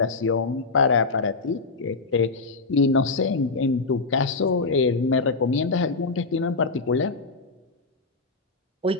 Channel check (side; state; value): right; quieter; 3.9 dB